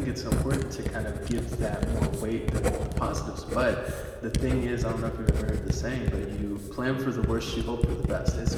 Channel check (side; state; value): both; identical; correlation 1.00